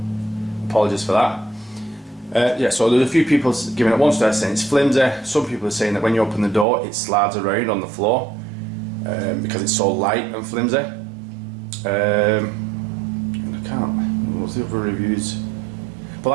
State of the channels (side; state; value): left; drops out; at 6.7 s